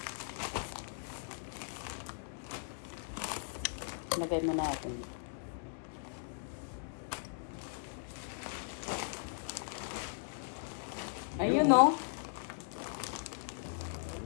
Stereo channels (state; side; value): silent; right; digital silence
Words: Lagay mo natin. Ayun oh.